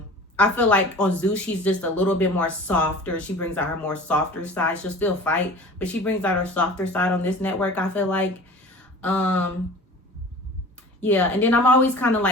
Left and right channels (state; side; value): normal; both; correlation 0.41